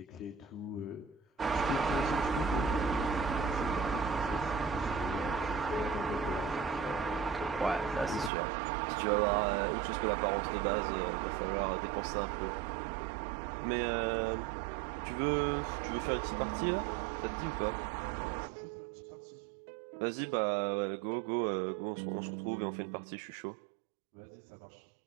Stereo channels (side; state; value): left; drops out; at 8.3 s